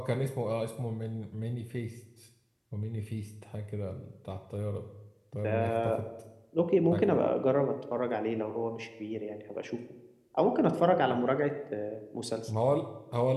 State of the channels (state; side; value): identical; both; correlation 1.00